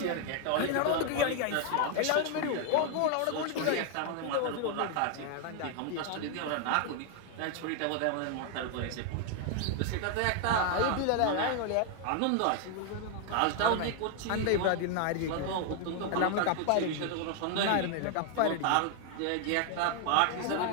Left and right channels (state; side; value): different; both; correlation 0.00